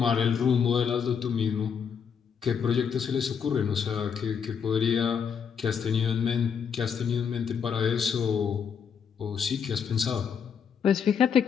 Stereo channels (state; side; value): quieter; right; 7.0 dB